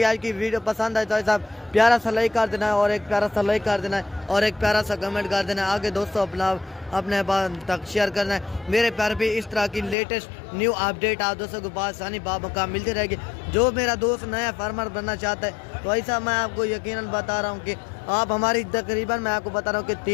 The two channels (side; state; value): right; drops out; at 10.0 s